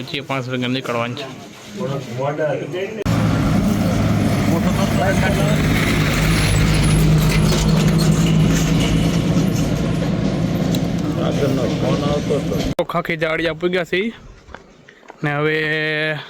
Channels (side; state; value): both; identical; correlation 1.00